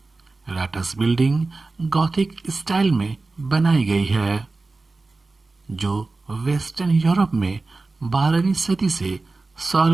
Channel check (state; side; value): quieter; left; 3.5 dB